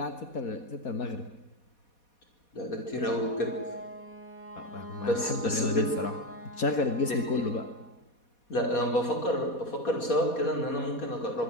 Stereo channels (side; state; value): right; late; 4.2 ms